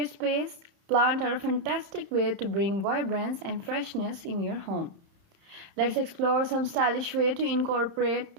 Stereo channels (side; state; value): left; late; 30 ms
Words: space, plants are a fantastic way to bring vibrance and freshness in your home. Let's explore some stylish way to incorporate